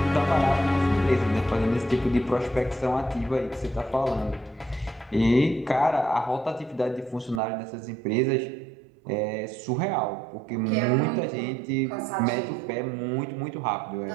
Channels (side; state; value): left; drops out; at 7.4 s